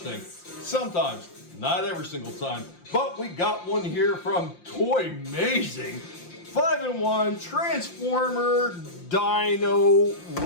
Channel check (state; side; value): late; right; 5.7 ms